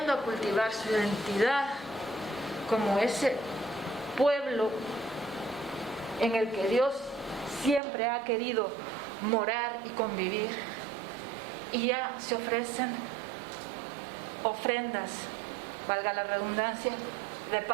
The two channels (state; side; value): drops out; left; at 7.8 s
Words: a cultivar su identidad como ese pueblo en el que Dios siempre ha querido morar y convivir. Y ya se ofrecen ofrendas, valga la redundancia, de